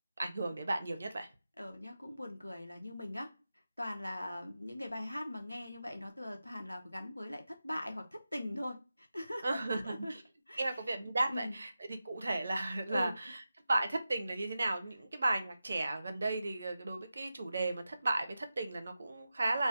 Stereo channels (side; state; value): both; inverted; correlation -0.92